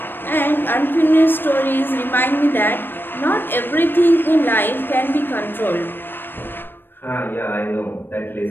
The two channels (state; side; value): late; right; 0.097 ms